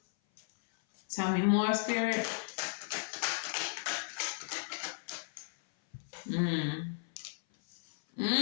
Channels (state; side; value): silent; right; 55 dB below the other